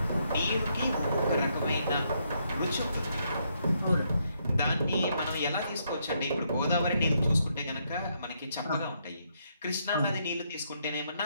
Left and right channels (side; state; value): both; inverted; correlation -0.76